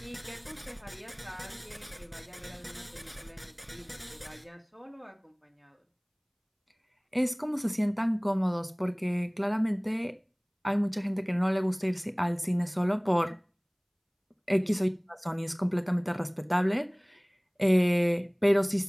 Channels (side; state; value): both; identical; correlation 1.00